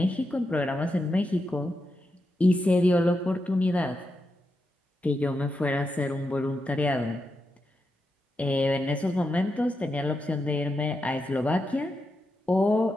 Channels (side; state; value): both; normal; correlation 0.86